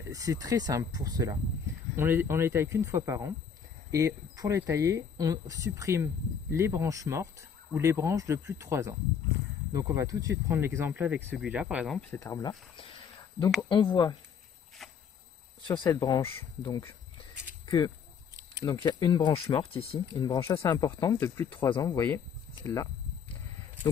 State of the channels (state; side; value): quieter; right; 6.8 dB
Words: c'est très simple pour cela. On les taille qu'une fois par an. Et pour les tailler, on supprime les branches mortes ou les branches de plus de 3 ans. Donc on va tout de suite prendre l'exemple avec celui-là, par exemple, cet arbre-là. Donc on voit sur cette branche donc il y a une branche morte ici, une branche assez importante de plus de 3 ans, vous voyez, celle-là.